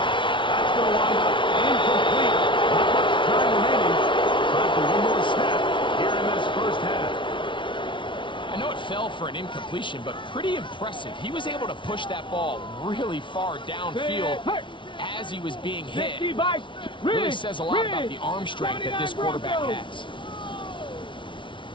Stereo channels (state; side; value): late; right; 0.24 ms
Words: That's going to wind up incomplete. Not much time remaining. Time for one more snap here in this first half. I know it fell for an incompletion, but pretty impressive. He was able to push that ball really far downfield as he was being hit. Really says a lot about the arm strength that this quarterback has.